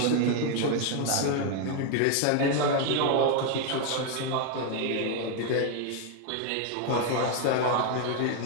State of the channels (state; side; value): different; both; correlation 0.00